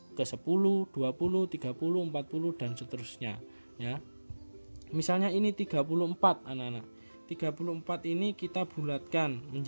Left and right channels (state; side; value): inverted; both; correlation -1.00